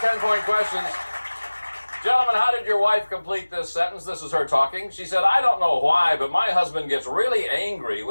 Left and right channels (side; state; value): both; inverted; correlation -1.00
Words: questions. Gentlemen, how did your wife complete this sentence? This is her talking. She said, I don't know why, but my husband gets really angry